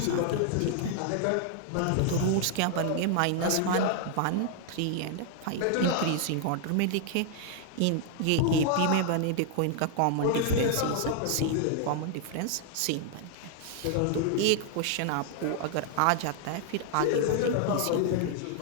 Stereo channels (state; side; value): different; both; correlation 0.00